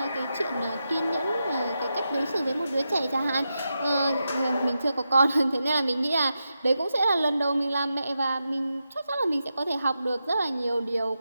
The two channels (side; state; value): both; inverted; correlation -0.88